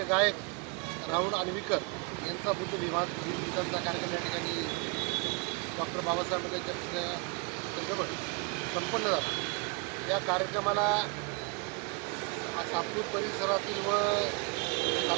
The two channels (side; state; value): left; quieter; 31.8 dB